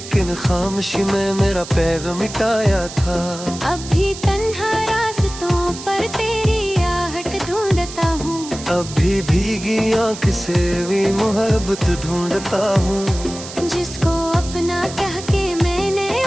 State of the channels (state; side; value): noise; right; hiss, 12 dB below the sound